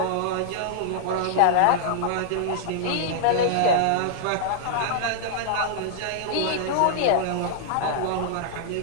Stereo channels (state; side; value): different; both; correlation -0.01